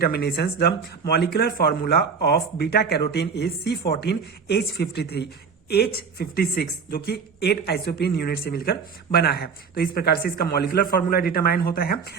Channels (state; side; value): quieter; left; 5.7 dB